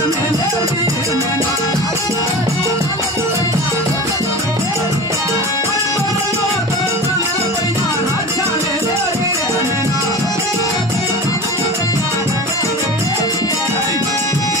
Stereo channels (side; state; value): both; normal; correlation 0.33